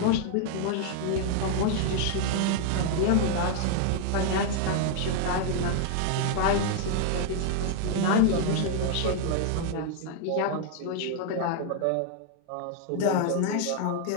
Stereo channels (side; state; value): both; different; correlation 0.00